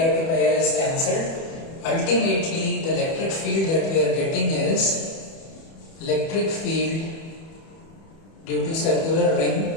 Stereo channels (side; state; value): right; late; 31 ms